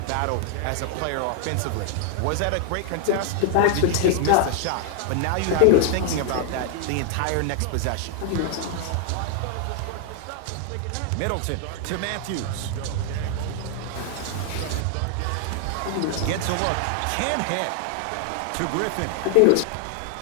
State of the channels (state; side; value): different; both; correlation 0.00